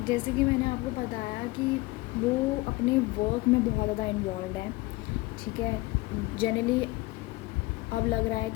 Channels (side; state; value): right; quieter; 21.4 dB